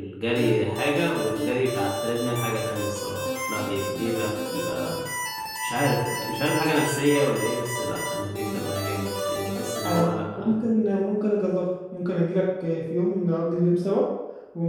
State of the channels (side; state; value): both; identical; correlation 1.00